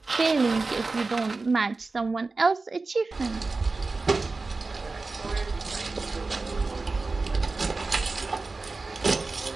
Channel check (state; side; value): quieter; left; 3.7 dB